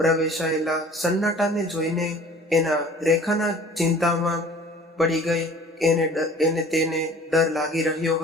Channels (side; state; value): both; normal; correlation 0.48